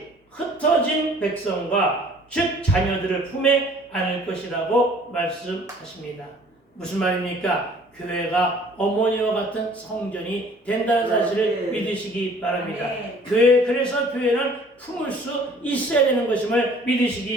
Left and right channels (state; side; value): normal; both; correlation 0.53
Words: 흩어진 백성과 즉 자녀들을 품에 안을 것이라고 말씀하십니다. 무슨 말입니까? 교회가 어머니와 같은 성전이 된다는 사실을 믿으시기 바랍니다. 그래서 교회는 품을 수 있어야 되는 것임을